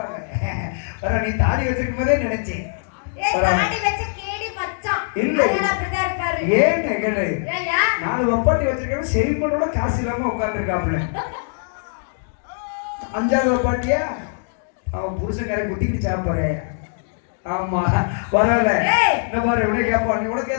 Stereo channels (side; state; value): right; silent; digital silence